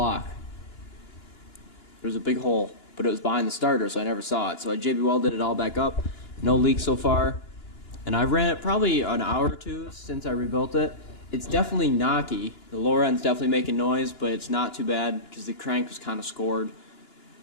There was a big hole, but it was behind the starter, so I never saw it. So I JB welded it all back up. No leaks so far. And I ran it probably an hour or two since I rebuilt it. It's definitely knocky. The lower end's definitely making noise, but it's not too bad because the crank was kind of scored.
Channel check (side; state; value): right; late; 2.9 ms